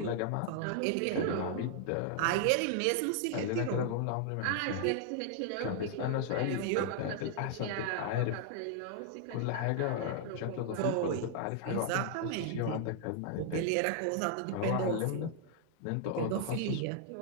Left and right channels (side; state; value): both; different; correlation -0.01